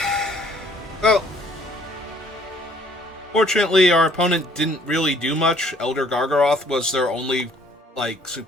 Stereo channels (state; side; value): normal; both; correlation 0.60